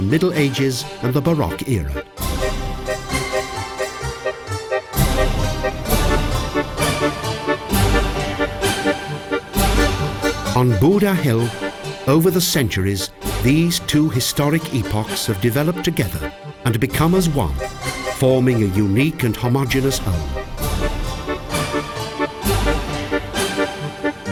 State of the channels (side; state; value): both; identical; correlation 1.00